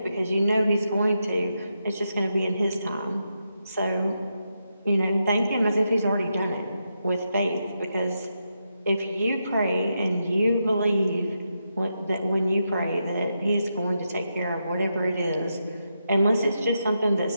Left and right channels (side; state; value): both; inverted; correlation -0.85